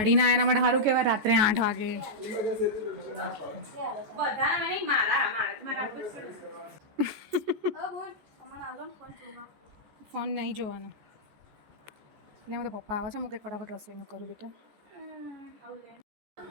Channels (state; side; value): late; left; 14 ms